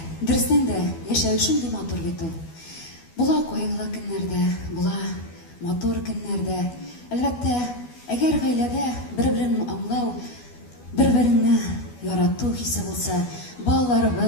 Дұрыстан да яшәу шундый матур бит ул. Була кайгылы көннәрдә, була матур көннәрдә. Әлбәттә, әгәр гаиләдә бер-берен аңлау, бер-береңне ярату хисе булса,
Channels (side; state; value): right; late; 12 ms